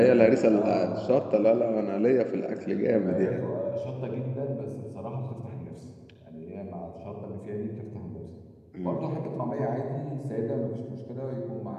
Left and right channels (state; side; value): identical; both; correlation 1.00